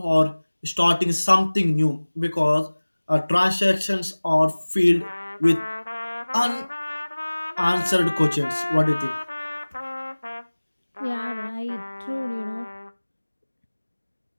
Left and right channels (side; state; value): both; inverted; correlation -1.00